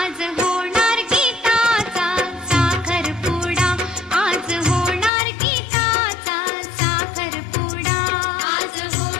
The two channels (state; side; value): drops out; right; at 5.1 s